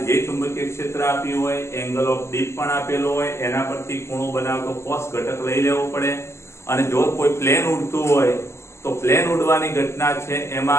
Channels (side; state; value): right; late; 0.13 ms